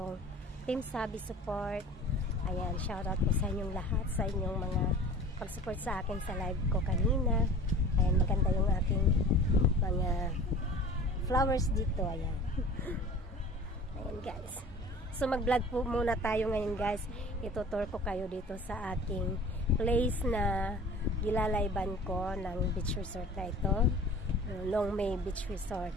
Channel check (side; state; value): both; normal; correlation 0.43